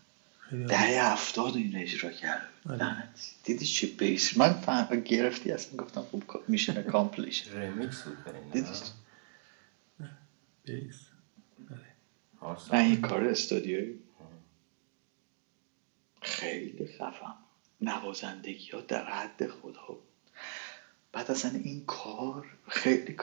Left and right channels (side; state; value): left; silent; digital silence